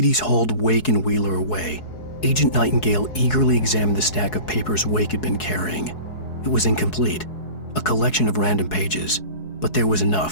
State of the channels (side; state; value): right; late; 4.7 ms